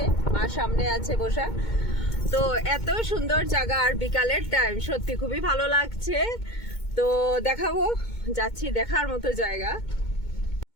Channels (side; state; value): right; late; 2.2 ms